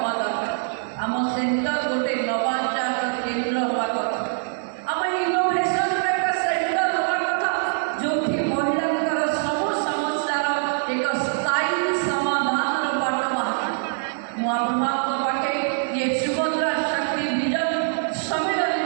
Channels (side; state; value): left; silent; 63 dB below the other